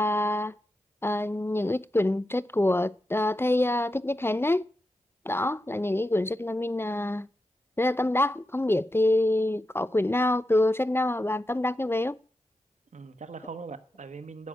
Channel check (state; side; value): normal; both; correlation 0.88